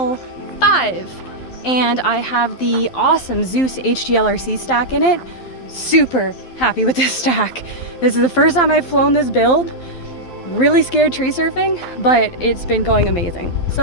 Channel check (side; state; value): right; late; 12 ms